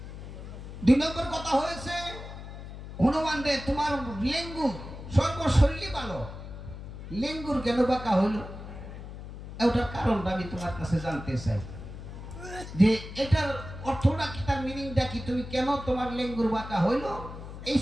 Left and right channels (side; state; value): left; noise; hum, 11 dB below the sound